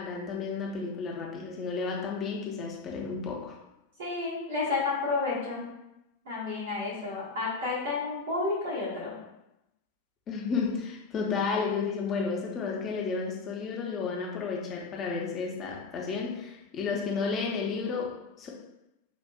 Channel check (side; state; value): right; quieter; 4.2 dB